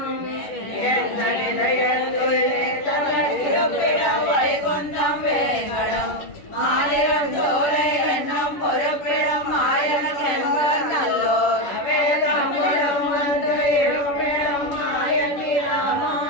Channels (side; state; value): right; late; 11 ms